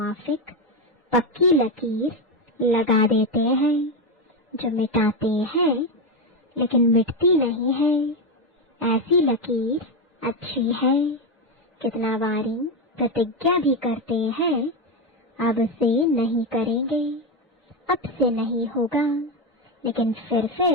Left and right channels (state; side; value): normal; both; correlation 0.11